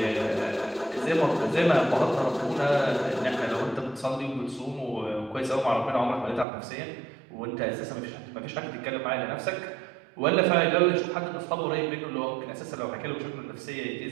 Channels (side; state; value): left; drops out; at 6.5 s